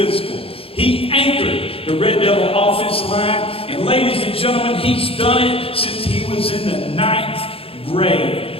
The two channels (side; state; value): right; late; 0.27 ms